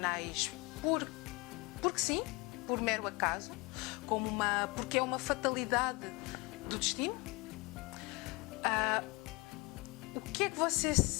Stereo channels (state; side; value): quieter; right; 25.9 dB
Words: porque sim, por mero acaso, porque é uma fatalidade do destino? O que é que você